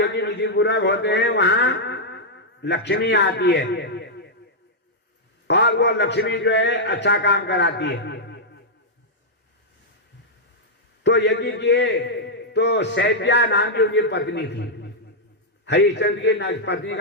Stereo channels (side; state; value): both; normal; correlation -0.06